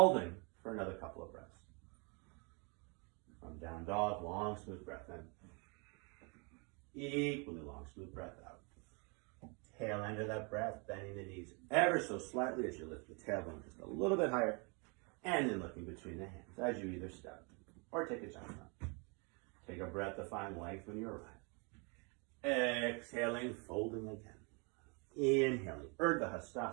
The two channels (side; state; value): left; quieter; 32.9 dB